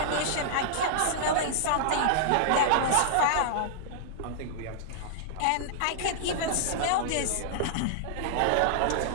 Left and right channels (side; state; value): both; different; correlation -0.01